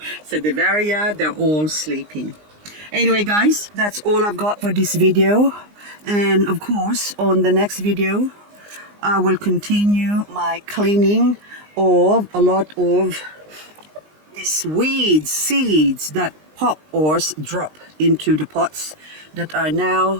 Echeveria, they're all sleeping. Anyway guys, that's all I've got for this video. And of course, on the next video, I will continue my cleaning of a lot of these weeds, seeds that pop or drop into the pots that are now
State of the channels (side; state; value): left; late; 19 ms